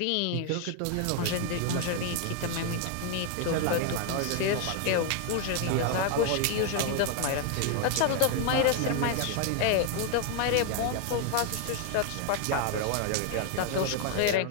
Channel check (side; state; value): both; different; correlation 0.00